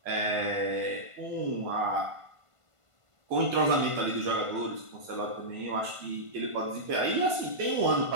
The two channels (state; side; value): late; left; 1.5 ms